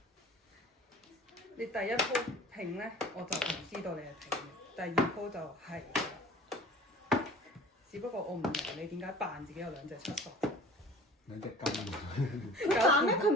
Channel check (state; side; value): normal; both; correlation 0.44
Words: 你第一鋪平咧，我就唔知道你係平嘅。第二鋪就係啦，只不過我唔明你點解扮自己有兩隻七索。兩隻金佢扮咩？佢